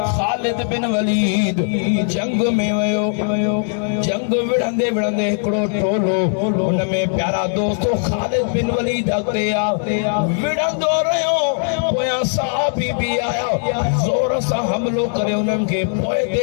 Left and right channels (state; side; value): silent; right; 62 dB below the other